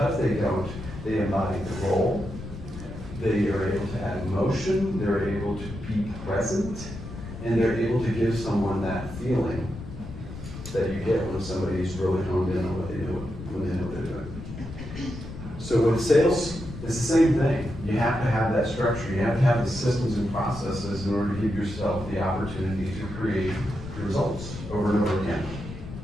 they don't, they embody the role. They are able to add emotion, they're able to be present, and they're able to give someone that feeling that you get when somebody's really honed in on what they do when they know what they're doing. So with sales, it's the same thing. You have to have that structure. You have to have the systems and processes in order to give yourself the opportunity to create results over and over again.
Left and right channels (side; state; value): left; noise; rumble, 11 dB below the sound